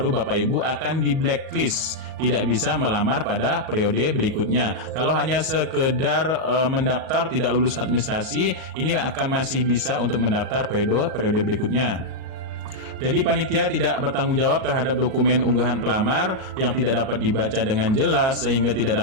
Bapak Ibu akan di blacklist, tidak bisa melamar pada periode berikutnya. Kalau hanya sekedar mendaftar tidak lulus administrasi, ini akan masih bisa untuk mendaftar periode berikutnya. Jadi panitia tidak bertanggung jawab terhadap dokumen unggahan pelamar yang tidak dapat dibaca dengan jelas sehingga tidak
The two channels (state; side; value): late; left; 38 ms